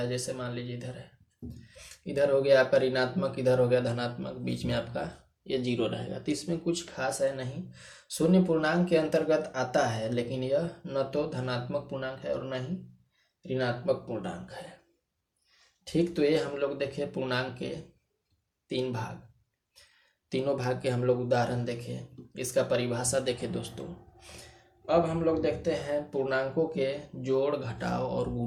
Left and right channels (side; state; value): both; identical; correlation 1.00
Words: जैसे मान लीजिए इधर है, इधर हो गया आपका ऋणात्मक, इधर हो गया धनात्मक, बीच में आपका ये जीरो रहेगा। तो इसमें कुछ खास है नहीं, शून्य पूर्णांक के अंतर्गत आता है, लेकिन यह न तो धनात्मक पूर्णांक है और न ही ऋणात्मक पूर्णांक है। ठीक, तो ये हम लोग देखे पूर्णांक के तीन भाग, तीनों भाग के हम लोग उदाहरण देखे, इसका परिभाषा देखे दोस्तों। अब हम लोग देखते हैं पूर्णांकों के जोड़, घटाव और